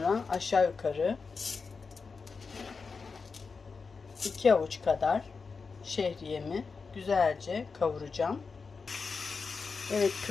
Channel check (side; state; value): right; quieter; 4.8 dB